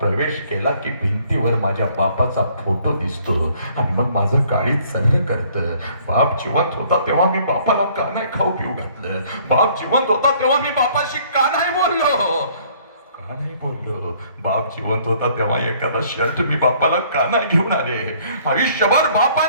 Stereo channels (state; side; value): inverted; both; correlation -0.60